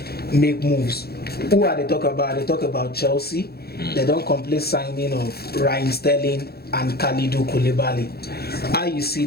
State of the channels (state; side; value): late; right; 0.46 ms